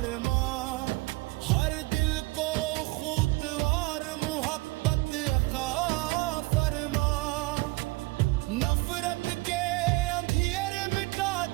ہر دل کو خوتوار محبت عطا فرما، نفرت کے اندھیرے مٹا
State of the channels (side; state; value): left; quieter; 22.5 dB